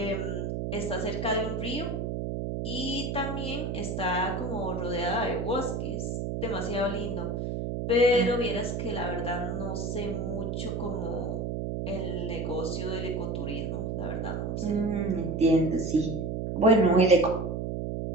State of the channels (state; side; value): noise; right; hum, 2 dB below the sound